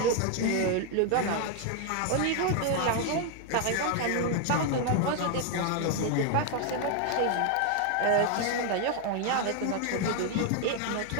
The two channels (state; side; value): different; both; correlation 0.00